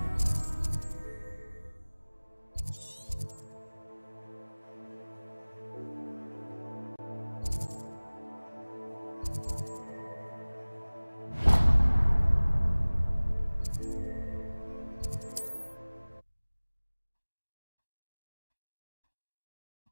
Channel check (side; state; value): both; inverted; correlation -1.00